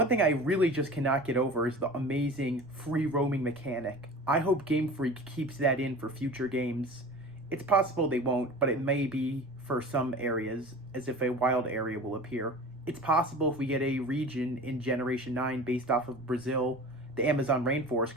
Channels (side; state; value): right; noise; rumble, 25 dB below the sound